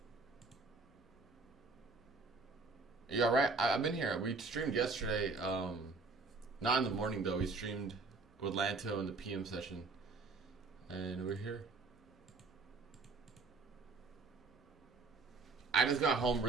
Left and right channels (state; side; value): quieter; left; 4.0 dB